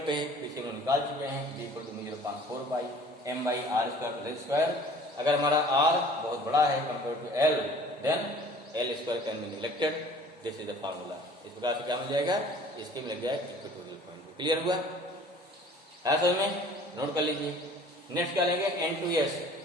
पे है पीछे हम निकाल चुके हैं, B equal to 0.4 pi M by R square. अगर हमारा आर बहुत बड़ा है compare to L, then L square can be neglected, this is the formula. इस प्रकार से क्या मिल जाएगा, इसके मिल जाएगा इक्वेटोरियल पॉइंट। क्लियर हुआ है समझ में, नोट कर लीजिए। नेक्स्ट क्या लेंगे, एन टू एस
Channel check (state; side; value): normal; both; correlation 0.49